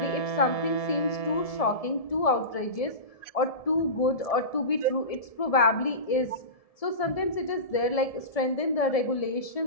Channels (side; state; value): right; late; 1.7 ms